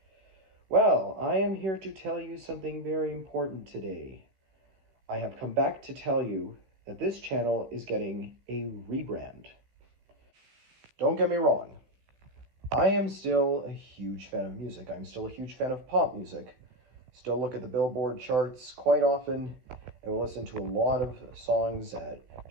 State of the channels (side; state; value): left; late; 16 ms